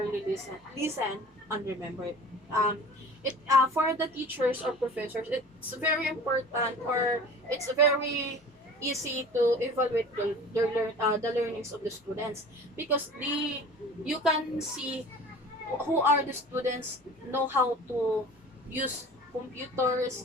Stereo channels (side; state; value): both; normal; correlation 0.41